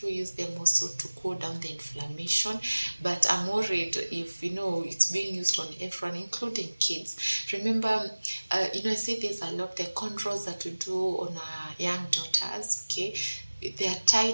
do use them also to cool down the inflammation, but I'm worried if, it's being used on everyone, including kids. Remember, I say there's a lot, the controls that we do on our young daughters, okay, they are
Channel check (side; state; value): both; inverted; correlation -1.00